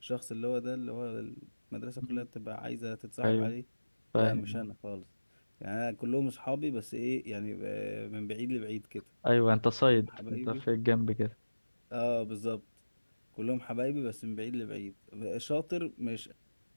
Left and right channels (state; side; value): inverted; both; correlation -1.00